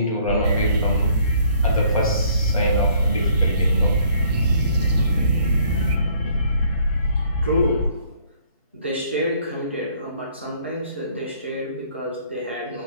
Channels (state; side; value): inverted; both; correlation -0.61